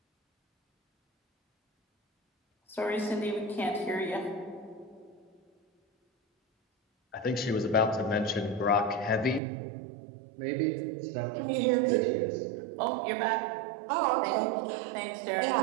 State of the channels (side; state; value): left; drops out; at 9.4 s